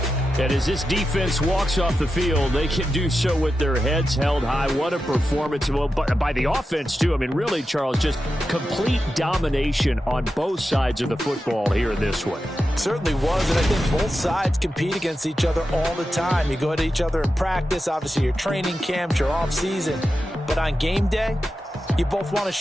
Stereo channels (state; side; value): normal; both; correlation 0.90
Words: And as this defense walks off the field, they can do so with their heads held high. What a performance. Well, by the offense, too. I mean, really, Charles, just complete domination on both sides of the football here in this one. Certainly was, and I think both sides compete against each other all the time. You go at each other in practice, obviously your training camps, your off-season. But on game day, you both want to